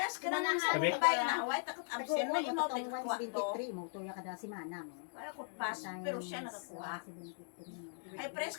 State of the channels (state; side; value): silent; right; digital silence